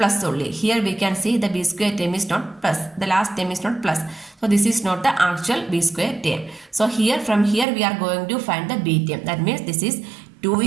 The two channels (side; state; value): left; drops out; at 7.7 s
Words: only. Here we can see the b square term is not plus, the last term is not plus. So this is not the actual b square term. So here, from here we are going to find the b term. That means this is 2